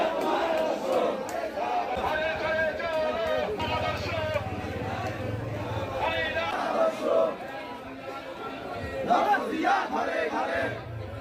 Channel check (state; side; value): identical; both; correlation 1.00